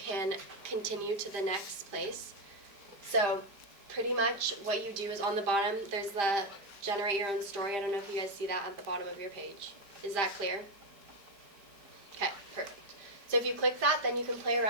continue to the next place. So pretty much what you do is on the bottom, there's the generate your own story. I don't know if you guys see that at the bottom of your page. Is that clear? Okay, perfect. So if you click that, then you can play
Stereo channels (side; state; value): left; late; 5.0 ms